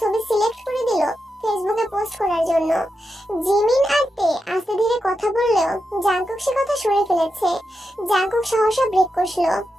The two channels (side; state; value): both; normal; correlation 0.87